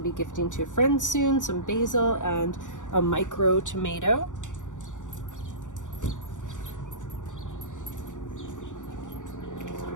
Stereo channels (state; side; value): late; right; 0.86 ms